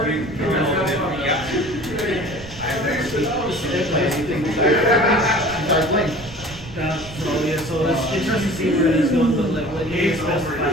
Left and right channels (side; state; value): right; noise; rumble, 16 dB below the sound